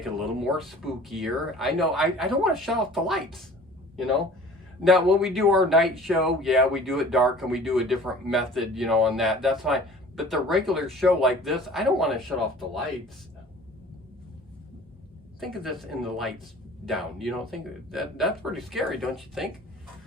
it a little more spookier. I know, I don't want to shut off the lights, you know? Now, when we do our night show, yeah, we do it dark and we do a different method, you know, on that. That's fine. But the regular show like this, I don't want to shut off the lights. Think of this in the lights down, you know, that's pretty scary, don't you think?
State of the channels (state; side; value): normal; both; correlation 0.46